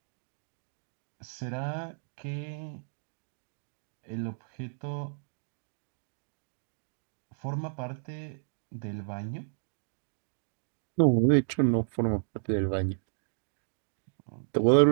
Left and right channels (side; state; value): left; silent; digital silence